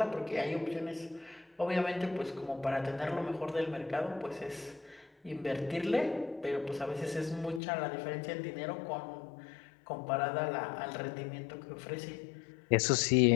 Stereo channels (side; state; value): right; drops out; at 7.6 s